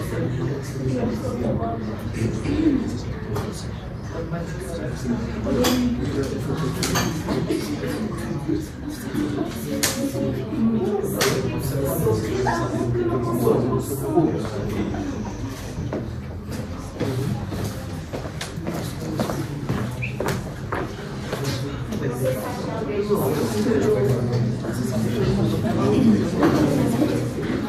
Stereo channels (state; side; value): identical; both; correlation 1.00